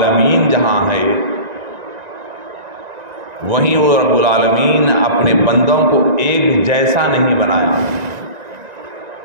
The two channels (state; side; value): late; left; 1.9 ms